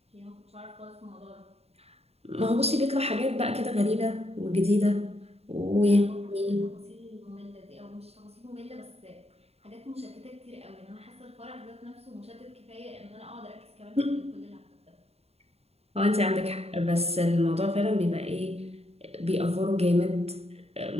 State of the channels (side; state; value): left; late; 0.30 ms